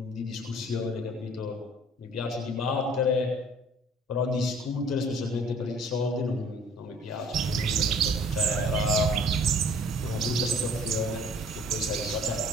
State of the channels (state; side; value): normal; both; correlation 0.52